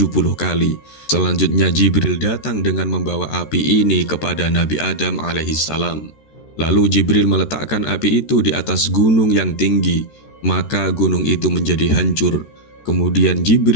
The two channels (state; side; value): late; right; 13 ms